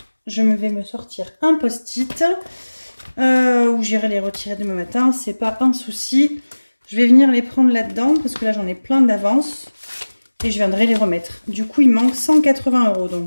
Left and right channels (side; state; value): both; inverted; correlation -1.00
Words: Je vais me sortir un post-it. Ou j'irai les retirer demain matin, c'est pas un souci. Je vais venir les prendre là-dedans parce que là j'en ai plein d'avance et je viendrai les remettre. Du coup il manque 180 €.